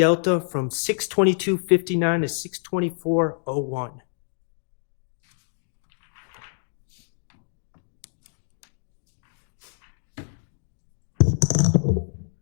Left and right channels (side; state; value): right; silent; 60 dB below the other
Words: from 622.59 to 624.01.